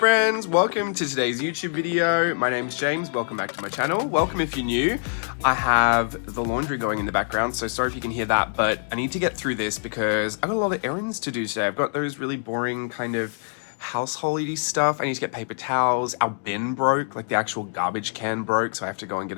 welcome to today's YouTube video. My name's James, welcome back to my channel. Welcome if you're new. I have the laundry going in the background, so sorry if you can hear that, but I need to get through this because I've got a lot of errands to do today. I've got those really boring kind of householdy stuff. I need to get paper towels. Our bin broke, like the actual garbage can broke, so I have to go and get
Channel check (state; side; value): silent; right; digital silence